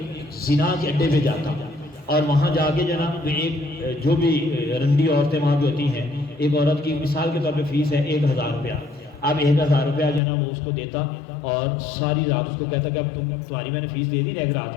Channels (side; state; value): right; drops out; at 10.2 s